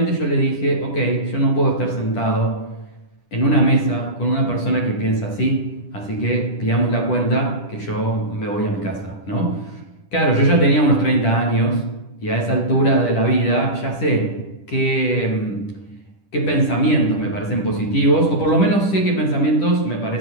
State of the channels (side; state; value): right; late; 10 ms